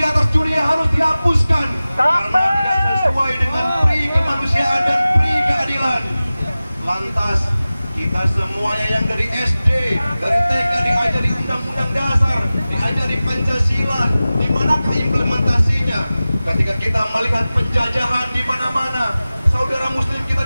dunia harus dihapuskan karena tidak sesuai dengan pri kemanusiaan dan pri keadilan. Lantas kita semuanya yang dari SD, dari TK diajari Undang-Undang Dasar, diajari Pancasila, di manakah implementasinya? Ketika kita melihat penjajahan di mana-mana, saudara Muslim kita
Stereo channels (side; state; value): both; inverted; correlation -0.97